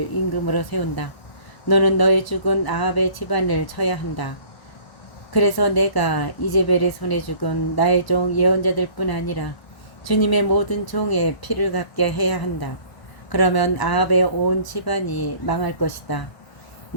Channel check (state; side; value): late; right; 1.1 ms